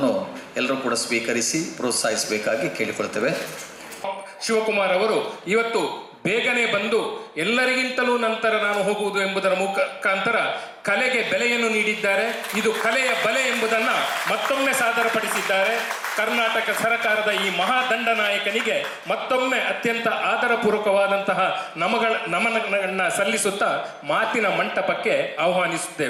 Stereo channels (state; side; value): identical; both; correlation 1.00